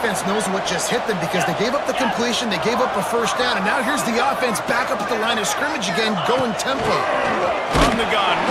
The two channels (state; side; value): identical; both; correlation 1.00